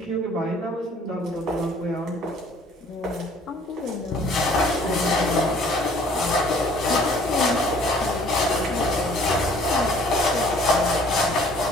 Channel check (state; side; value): normal; both; correlation 0.56